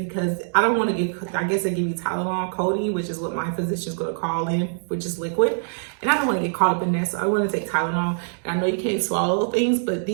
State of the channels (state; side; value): silent; left; 63 dB below the other